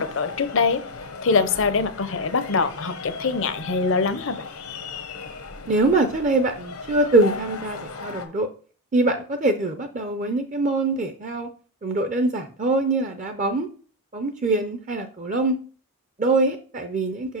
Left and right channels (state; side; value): normal; both; correlation 0.07